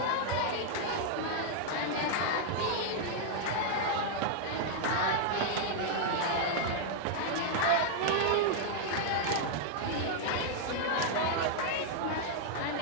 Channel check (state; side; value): different; both; correlation 0.00